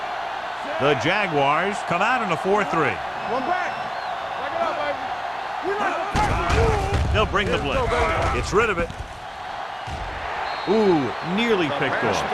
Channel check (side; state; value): both; identical; correlation 1.00